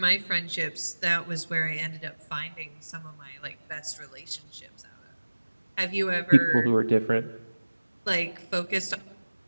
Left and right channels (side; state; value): both; inverted; correlation -1.00